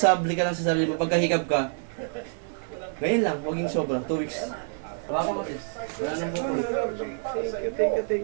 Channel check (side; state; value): left; silent; digital silence